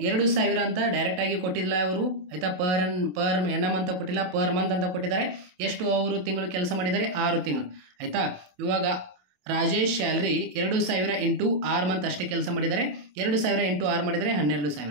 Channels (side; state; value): left; late; 27 ms